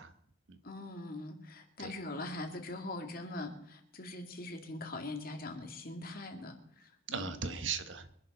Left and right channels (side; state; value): both; normal; correlation 0.29